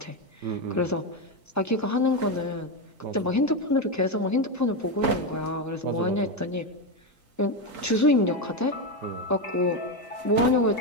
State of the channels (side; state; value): both; normal; correlation 0.10